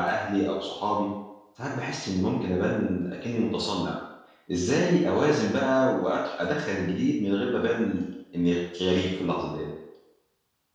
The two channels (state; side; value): identical; both; correlation 1.00